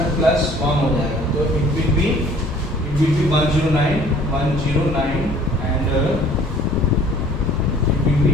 प्लस 1 हो जाएगा तो it will be 109 and it will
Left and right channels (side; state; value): both; normal; correlation 0.53